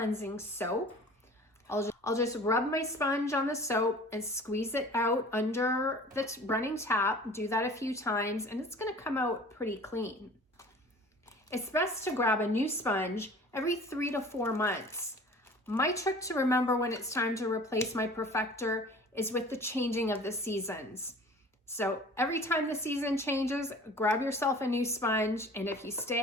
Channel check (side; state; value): both; normal; correlation 0.45